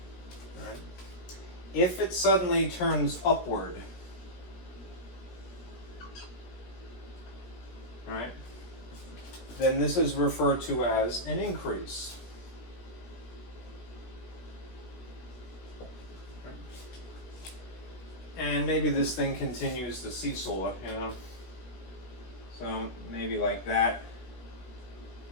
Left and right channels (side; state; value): right; late; 17 ms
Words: If it suddenly turns upward, right, then this is referred to as an increase. And maybe this thing continues to seesaw, you know. So maybe like that,